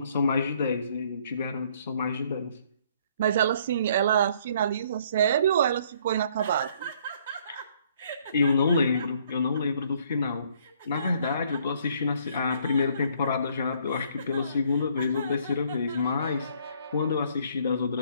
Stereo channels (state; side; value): inverted; both; correlation -0.63